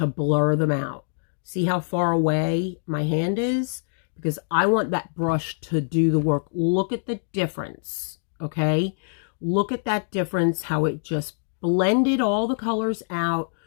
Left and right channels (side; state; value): right; silent; digital silence